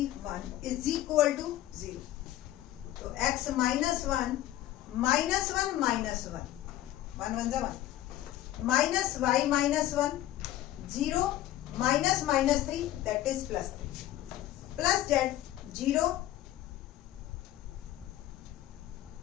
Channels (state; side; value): quieter; right; 13.9 dB